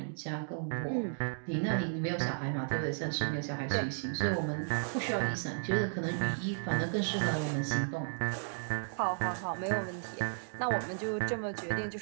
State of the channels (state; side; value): silent; left; digital silence